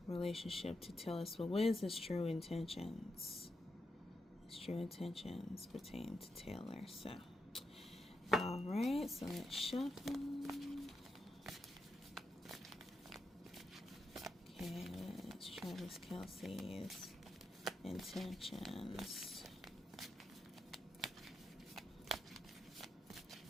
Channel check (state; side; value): normal; both; correlation 0.85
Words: relationship to Taylor Swift? What is his true intentions? His true intentions pertain to Taylor. So, all right. So let's shuffle. Okay, what's Traviskelce's intentions?